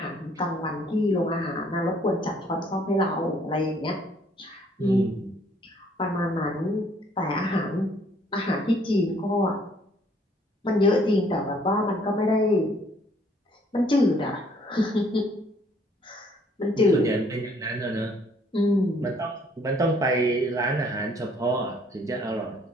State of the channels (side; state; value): both; normal; correlation 0.62